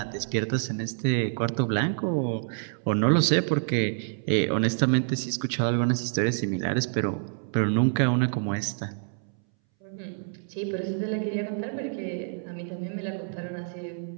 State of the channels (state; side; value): silent; left; 60 dB below the other